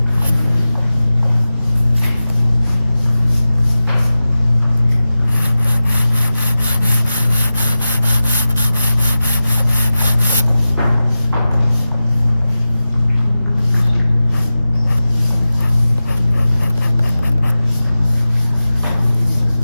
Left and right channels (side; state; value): both; inverted; correlation -0.94